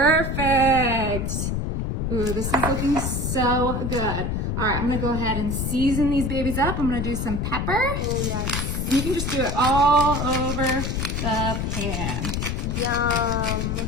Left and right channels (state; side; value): noise; left; rumble, 1 dB below the sound